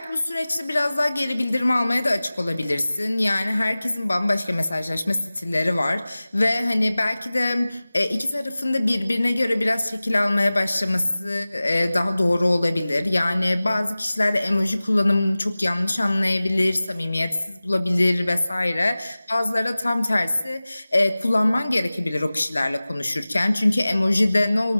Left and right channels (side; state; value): both; inverted; correlation -0.98